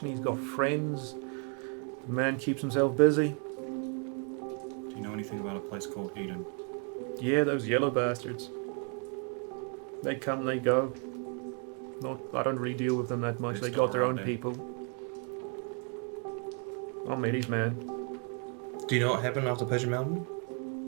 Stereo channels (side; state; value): left; quieter; 38.0 dB